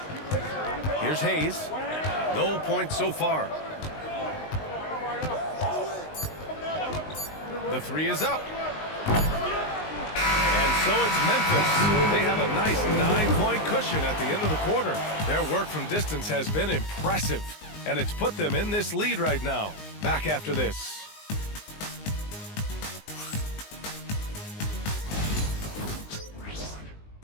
Here's Hayes. No points so far. The 3 is up. And so it's Memphis. They have a nice 9-point cushion at the end of the quarter. Their work from distance has been impressive, and it's put them in this lead right now. Back after this.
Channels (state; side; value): late; right; 19 ms